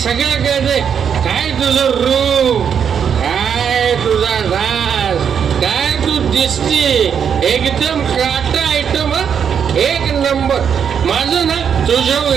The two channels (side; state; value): left; quieter; 7.6 dB